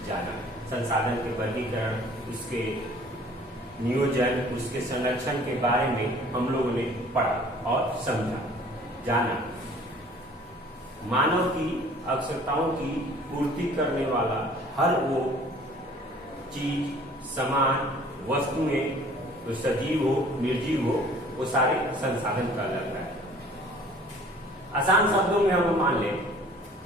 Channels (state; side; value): normal; both; correlation 0.51